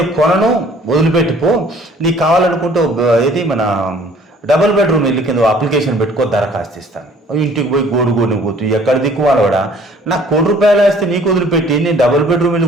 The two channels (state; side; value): normal; both; correlation 0.55